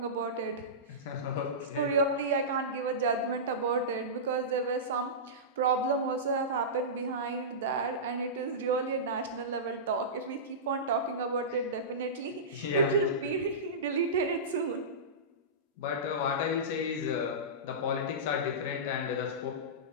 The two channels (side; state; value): both; normal; correlation -0.19